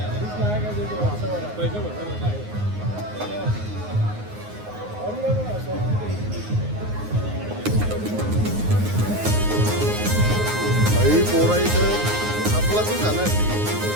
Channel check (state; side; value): late; left; 9.6 ms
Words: पैसे भरतो भाई पोरा इथं आपला तू खाणार